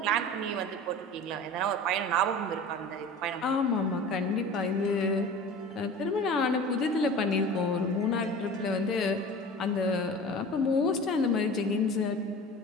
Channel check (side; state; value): both; normal; correlation 0.38